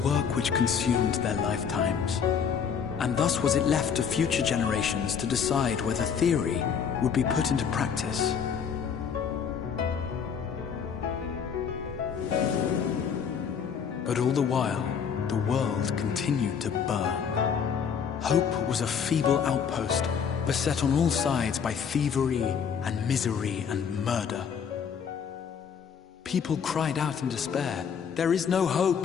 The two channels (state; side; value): quieter; right; 7.0 dB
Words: which consumed their lifetimes, and thus was it left to future generations to decide whether theory would be put into practice. But all the while, the world continued to burn. Hope was a feeble outpost, beset on all sides by thievery and misery and murder. People cried out in despair, "There is no